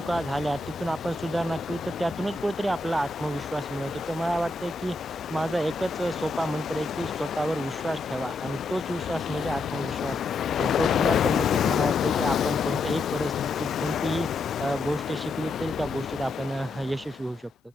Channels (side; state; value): right; quieter; 3.1 dB